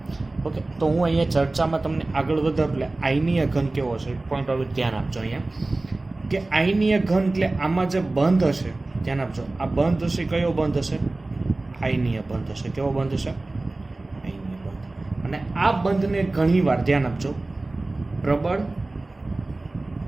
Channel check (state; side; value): quieter; left; 3.0 dB